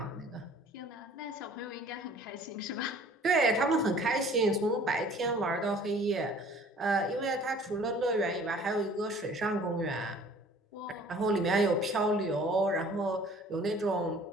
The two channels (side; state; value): both; normal; correlation 0.51